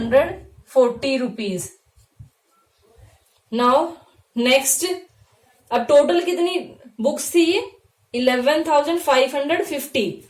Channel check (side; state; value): both; identical; correlation 1.00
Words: रुपीज। नाउ नेक्स्ट, अब टोटल कितनी बुक्स थी ये 11,550।